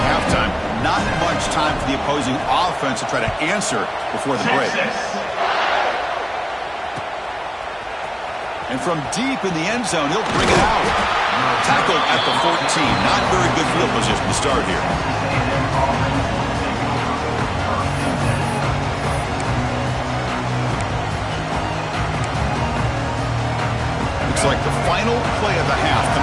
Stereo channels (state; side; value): identical; both; correlation 1.00